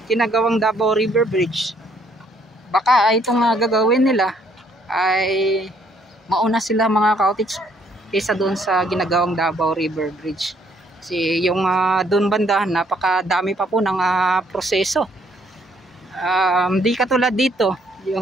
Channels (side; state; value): both; normal; correlation 0.66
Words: ginagawang Davao River Bridge. Baka itong gagawin nila ay mauna sila mga cottage kaysa doon sa ginagawang Davao River Bridge. Kasi yung doon banda napakadami pa po ng proseso. Di katulad dito